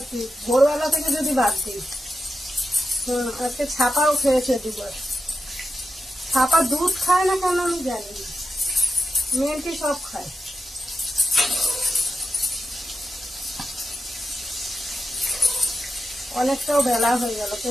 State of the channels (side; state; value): both; normal; correlation 0.89